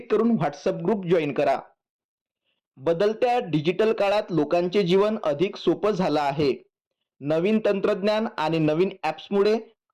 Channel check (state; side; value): identical; both; correlation 1.00